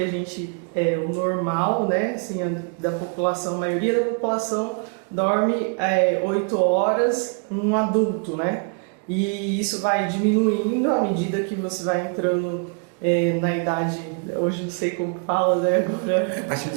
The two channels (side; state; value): left; quieter; 40.0 dB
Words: gente, o normal, né, assim, da população, a maioria da população dorme 8 horas um adulto, né, e isso vai diminuindo à medida que você vai entrando na idade, hoje não sei como fala, né, agora... A partir